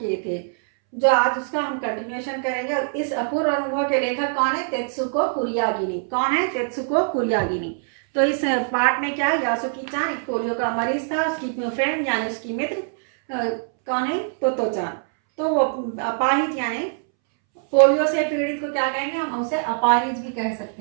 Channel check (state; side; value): silent; left; 63 dB below the other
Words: थे, जो आज उसका हम कंटिन्यूएशन करेंगे। इस अपूर्व अनुभव के लेखक कौन है? तेत्सुको कुरियागिनी। कौन है? तेत्सुको कुरियागिनी। तो इस पार्ट में क्या है, यासुकी चान एक पोलियो का मरीज था। उसकी फ्रेंड यानी उसकी मित्र कौन है? तोतो चान। तो वो अपाहिज यानी पोलियो से पीड़ित को क्या कहेंगे? हम उसे अपाहिज भी कह